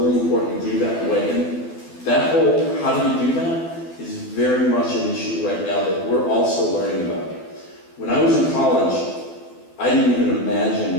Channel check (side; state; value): right; late; 12 ms